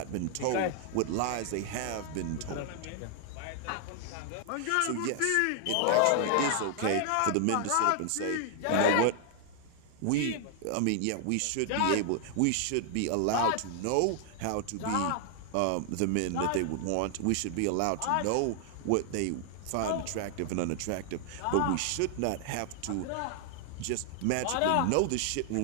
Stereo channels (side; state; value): both; different; correlation 0.00